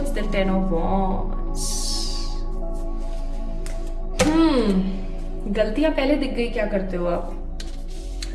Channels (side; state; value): both; identical; correlation 1.00